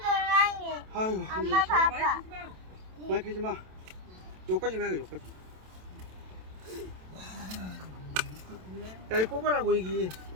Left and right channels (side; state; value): left; late; 27 ms